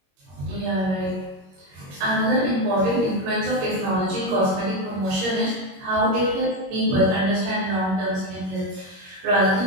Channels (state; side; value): late; left; 21 ms